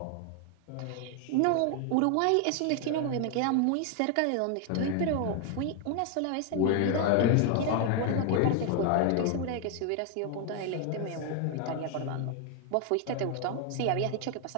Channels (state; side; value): different; both; correlation 0.00